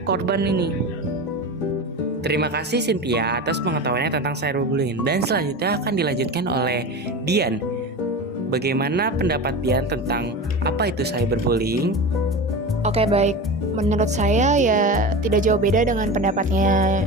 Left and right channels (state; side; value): normal; both; correlation 0.27